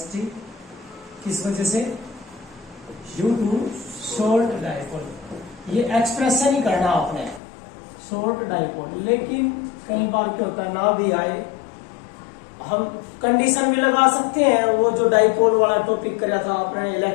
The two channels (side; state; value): right; drops out; at 7.4 s